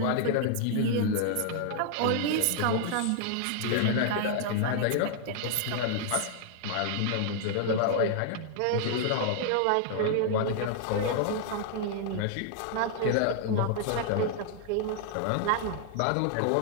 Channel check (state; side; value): different; both; correlation -0.01